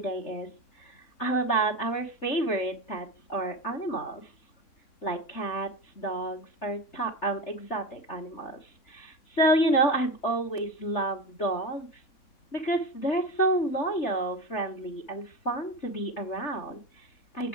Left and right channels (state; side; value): late; right; 3.3 ms